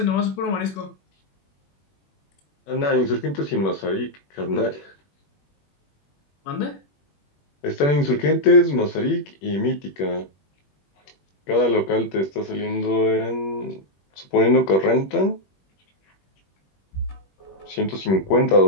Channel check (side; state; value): right; late; 21 ms